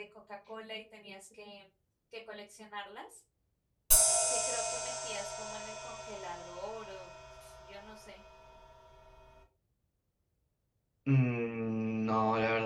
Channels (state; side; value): identical; both; correlation 1.00